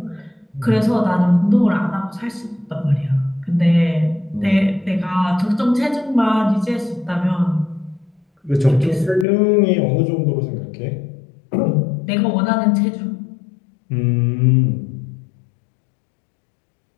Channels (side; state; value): right; drops out; at 9.2 s